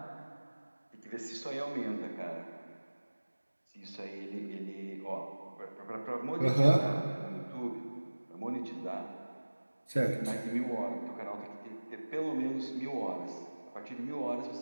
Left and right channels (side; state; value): both; inverted; correlation -1.00